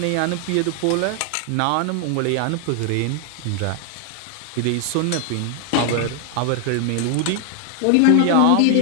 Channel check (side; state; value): both; different; correlation 0.00